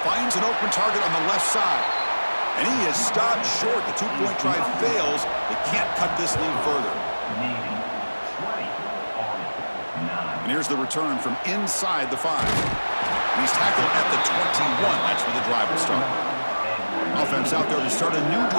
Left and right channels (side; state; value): both; inverted; correlation -1.00